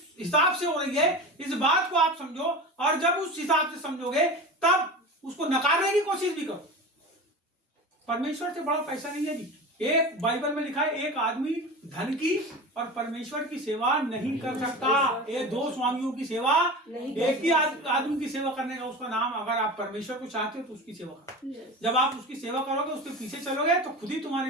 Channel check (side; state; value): both; normal; correlation 0.30